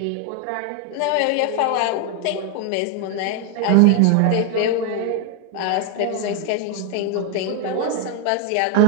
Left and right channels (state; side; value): different; both; correlation 0.01